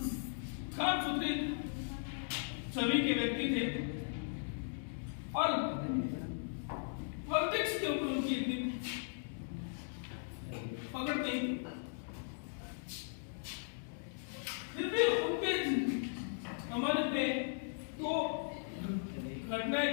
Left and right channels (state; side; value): silent; right; digital silence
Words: साफ सुथरी छवि के व्यक्ति थे और पॉलिटिक्स के ऊपर उनकी इतनी पकड़ नहीं थी। फिर भी उनके हमारे पे तो घटनाएं